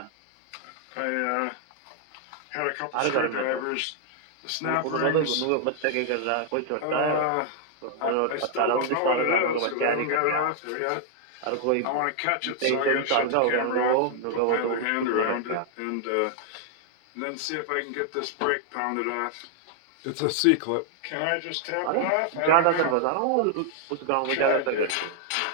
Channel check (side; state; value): both; different; correlation 0.00